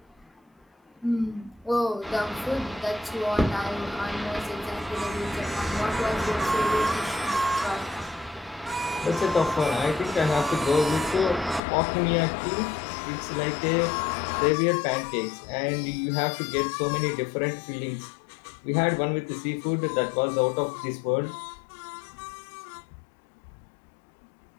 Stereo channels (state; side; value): drops out; right; at 11.6 s